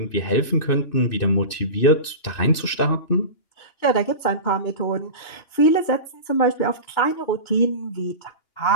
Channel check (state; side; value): late; right; 2.9 ms